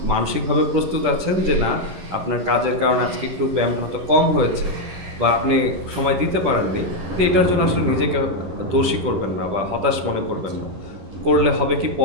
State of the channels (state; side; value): late; left; 10 ms